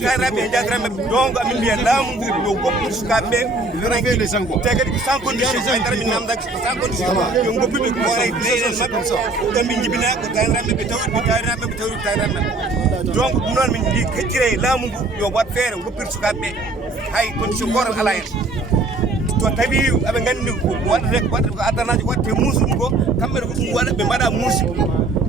e jadiraɓeɓe donc amin mbiya laamu ngu yo goppude sukaɓeɓe te kadi ko sans condition haydara min namdaki ko sans condition yo goppuɓe koore leyɗele mabɓe ɗon ɓe jibina ko tawiraɓeɓe tawiraɓeɓe tawiraɓeɓe donc ɗum noon min mbi keccire laamu ngu yo wat feere goppir sukaɓeɓe hay condition gotal ala hen to tawi aɓe gandi ko waɗata ko addanaji waɗete muusuɗum ko kamɓe ko ɗum waɗa ɓe mbaɗa muusi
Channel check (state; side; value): quieter; left; 3.0 dB